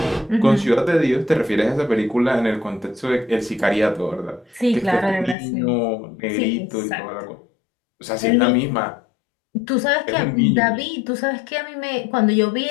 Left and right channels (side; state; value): right; drops out; at 5.4 s